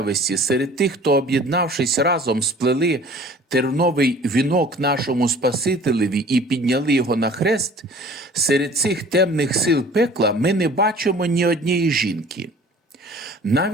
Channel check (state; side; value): normal; both; correlation 0.48